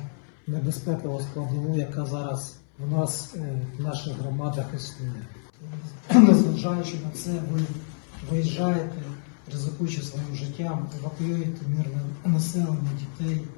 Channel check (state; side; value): silent; right; 59 dB below the other